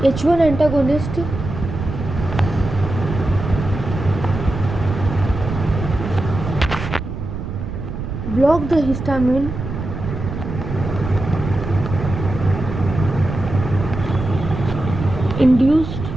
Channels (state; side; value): noise; right; rumble, 6 dB below the sound